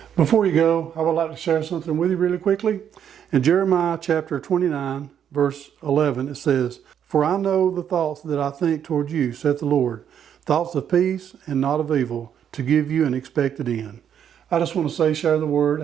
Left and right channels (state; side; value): quieter; left; 8.9 dB